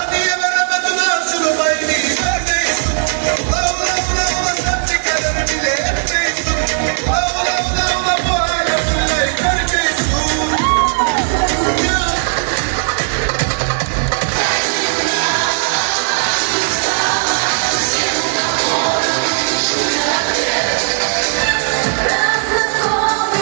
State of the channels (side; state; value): left; silent; digital silence